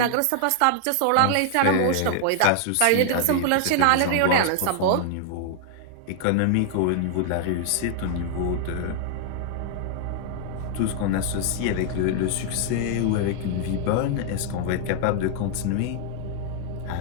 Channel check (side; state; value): both; different; correlation 0.00